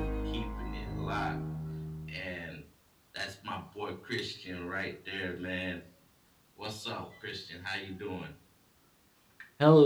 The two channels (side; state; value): both; identical; correlation 1.00